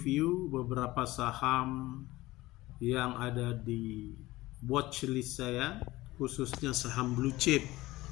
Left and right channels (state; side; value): quieter; right; 18.4 dB